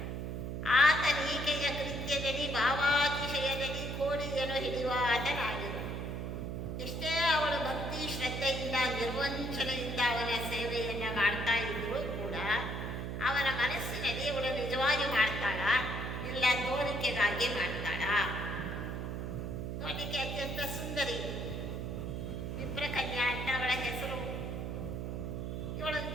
ಆತನೀಕೆಯ ಕೃತ್ಯದಲ್ಲಿ ಭಾವಾತಿಶಯದಲ್ಲಿ ಕೋಳಿಯನ್ನು ಹಿಡಿಯುವ ಆತನಾಗಿರು. ಎಷ್ಟೇ ಅವಳು ಭಕ್ತಿ ಶ್ರದ್ಧೆಯಿಂದ ನಿರ್ವಂಚನೆಯಿಂದ ಅವನ ಸೇವೆಯನ್ನು ಮಾಡ್ತಾ ಇದ್ದರೂ ಕೂಡ ಅವನ ಮನಸ್ಸಿನಲ್ಲಿ ಇವಳು ನಿಜವಾಗಿ ಮಾಡ್ತಾಳ, ಇಲ್ಲ ತೋರಿಕೆಗಾಗಿ ಮಾಡ್ತಾಳ. ನೋಡಲಿಕ್ಕೆ ಅತ್ಯಂತ ಸುಂದರಿ, ವಿಪ್ರಕನ್ಯಾ ಅಂತ ಅವಳ ಹೆಸರು. ಇವಳನ್ನು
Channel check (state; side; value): noise; right; hum, 4 dB below the sound